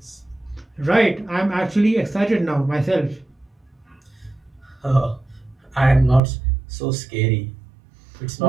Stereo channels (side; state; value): left; drops out; at 6.2 s